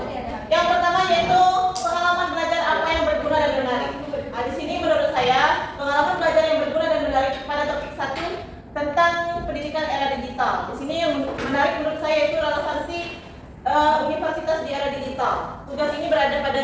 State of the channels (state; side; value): identical; both; correlation 1.00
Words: Yang pertama yaitu pengalaman belajar apa yang berguna dan menarik. Nah, di sini menurut saya pengalaman belajar yang berguna dan menarik pada topik 1 tentang pendidikan era digital. Di sini yang menarik menurut saya yaitu relevansi universitas di era digital. Tugas ini berada